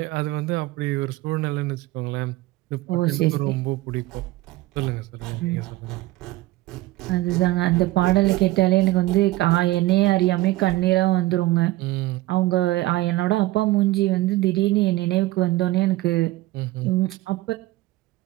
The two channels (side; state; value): left; quieter; 17.9 dB